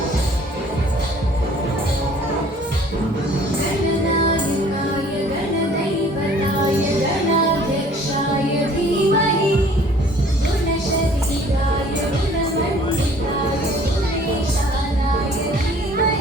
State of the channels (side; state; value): both; normal; correlation 0.54